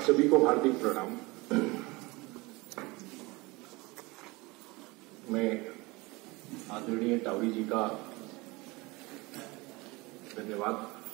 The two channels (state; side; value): quieter; left; 23.7 dB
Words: सभी को हार्दिक प्रणाम। मैं आदरणीय टावरी जी का धन्यवाद